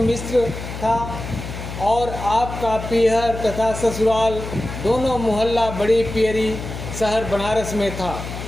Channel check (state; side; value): noise; left; hum, 9 dB below the sound